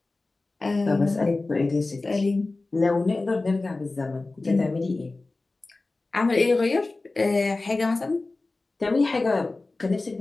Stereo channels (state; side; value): quieter; right; 3.3 dB